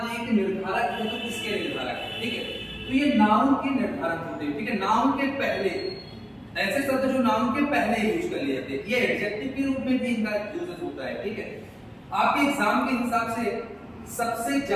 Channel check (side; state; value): both; identical; correlation 1.00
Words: है कि निर्धारक है तो किसके निर्धारक है, ठीक है? तो ये नाउन के निर्धारक होते हैं, ठीक है? नाउन के पहले, ऐसे शब्द जो नाउन के पहले यूज कर लिए जाते हैं, ये एडजेक्टिव के रूप में भी इनका यूज होता है, ठीक है? आपके एग्जाम के हिसाब से सबसे